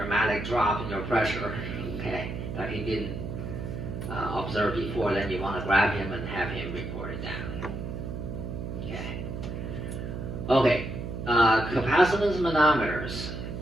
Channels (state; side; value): noise; right; hum, 6 dB below the sound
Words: drop in your pressure, okay, that he didn't observe before, then you want to grab him and have him report it down. Okay. Okay, capacitance manometers.